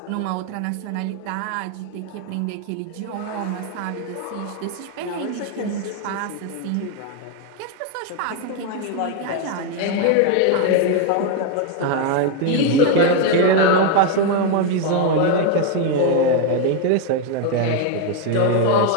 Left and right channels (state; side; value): different; both; correlation 0.01